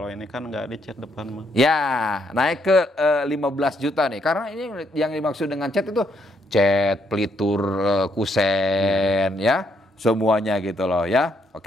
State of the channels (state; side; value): normal; both; correlation 0.73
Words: ini kan nggak dicat depan mah. ya, naik ke 15 juta nih. Karena ini yang dimaksud dengan cat itu cat, pelitur, kusen, ya. Semuanya gitu loh ya.